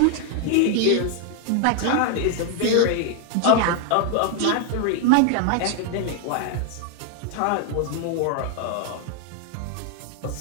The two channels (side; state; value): both; different; correlation 0.00